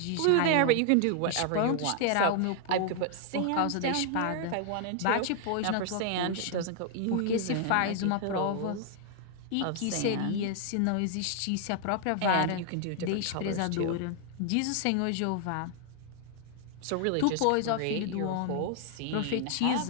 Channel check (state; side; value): different; both; correlation 0.00